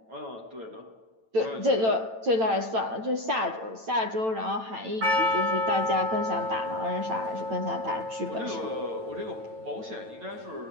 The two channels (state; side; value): late; left; 9.0 ms